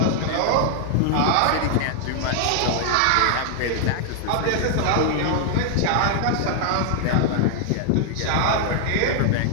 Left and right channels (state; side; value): different; both; correlation 0.00